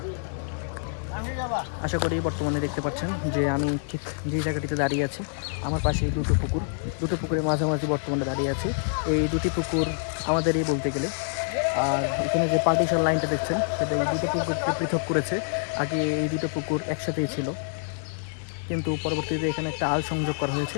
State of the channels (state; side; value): silent; right; 56 dB below the other